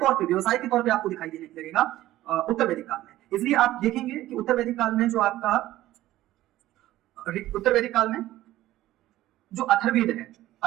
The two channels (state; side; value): quieter; left; 15.1 dB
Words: पे आपको दिखाई देने लगेगा उत्तर वैदिक काल में। इसलिए आप देखेंगे कि उत्तर वैदिक काल में जो आपका उत्तर वैदिक काल में जो अथर्ववेद है,